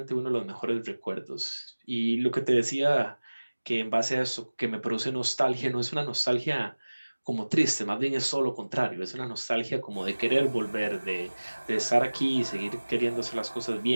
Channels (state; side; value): inverted; both; correlation -1.00